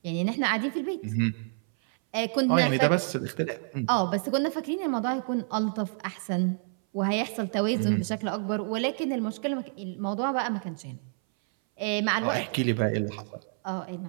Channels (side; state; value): left; silent; 59 dB below the other